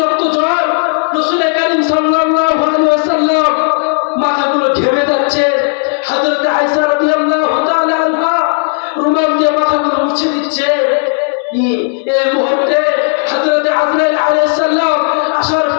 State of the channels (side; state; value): right; silent; 63 dB below the other